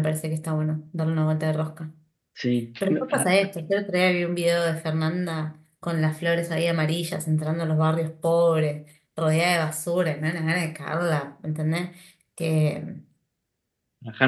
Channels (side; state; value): both; identical; correlation 1.00